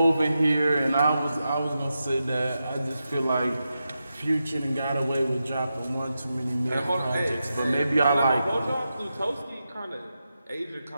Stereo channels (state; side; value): inverted; both; correlation -0.89